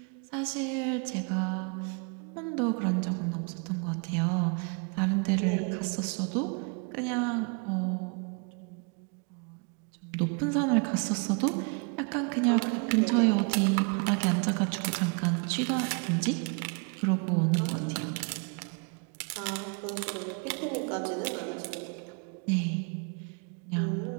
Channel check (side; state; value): left; quieter; 35.6 dB